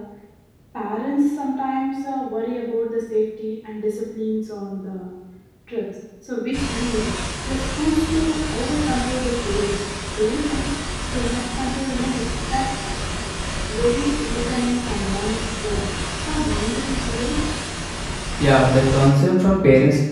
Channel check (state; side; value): identical; both; correlation 1.00